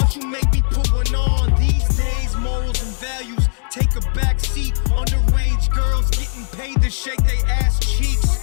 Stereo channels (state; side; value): silent; right; 67 dB below the other